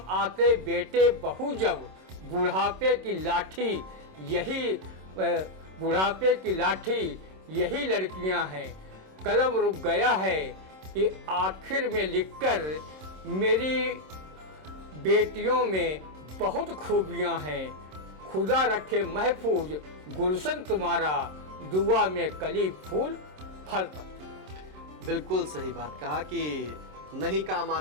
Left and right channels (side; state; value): left; late; 27 ms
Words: आते बेटे बहू जब, बुढ़ापे की लाठी यही लड़कियां हैं। कलम रुक गया है कि आखिर में लिखकर मेरी बेटियों में बहुत खूबियां हैं। खुदा रखे महफूज गुलशन तुम्हारा, दुआ में कली फूल फल पत्ती। बिल्कुल सही बात कहा कि नहीं काम